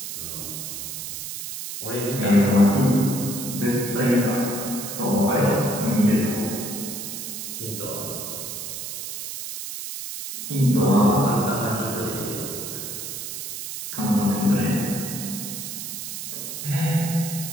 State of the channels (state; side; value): noise; right; hiss, 7 dB below the sound